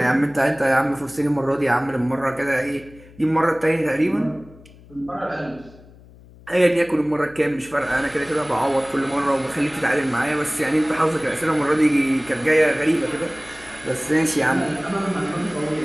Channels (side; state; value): left; noise; hum, 23 dB below the sound